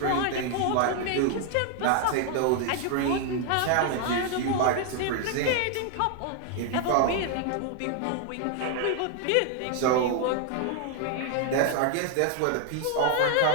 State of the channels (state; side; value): different; both; correlation 0.00